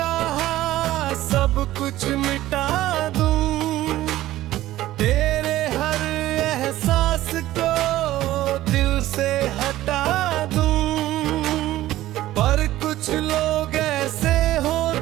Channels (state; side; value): quieter; left; 15.1 dB